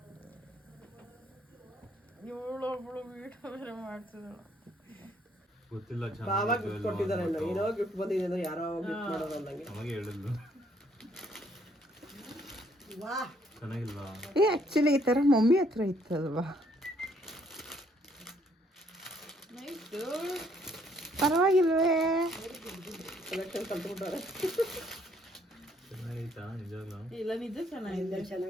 ಇವಳೊಬ್ಳು ವೀಡಿಯೋ ಬೇರೆ ಮಾಡ್ತಿದ್ದಾಳೆ. ಗೊತ್ತಿಲ್ಲ, ಬಾವ ಗಿಫ್ಟ್ ಕೊಟ್ಟಿದ್ದಾರೆ. ಏನೋ ಗಿಫ್ಟ್ ಬಂದಿದೆ ಅಂದ್ರೆ ಯಾರೋ ಗಿಫ್ಟ್ ಮಾಡೋದು ಅಂದಂಗೆ ನಮಗೆ ಹೇಳಿದ್ಲು. ವಾ ಚೆನ್ನಾಗಿಲ್ವಾ? ಆಕ್ಚುಲಿ ಈ ತರ ಮಮ್ಮಿ ಹತ್ರ ಇತ್ತಲ್ವಾ, ಪರವಾಗಿಲ್ವೇ? ಕಲೆಕ್ಷನ್ ಕಲ್ತ್ಬಿಟ್ಟಾರೆ. ಚೆನ್ನಾಗೈತಾ ನಿಜವಾಗ್ಲೂ? ಇಲ್ಲ ನಿಜ ಚೆನ್ನಾಗಿದೆ.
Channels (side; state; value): both; normal; correlation 0.67